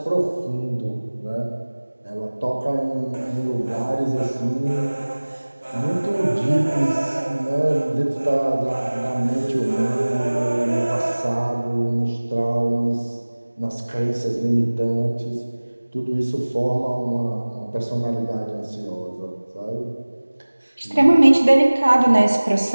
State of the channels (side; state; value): both; inverted; correlation -1.00